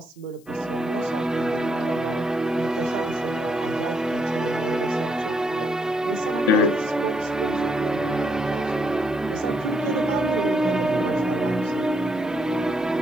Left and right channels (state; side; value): noise; left; hiss, 29 dB below the sound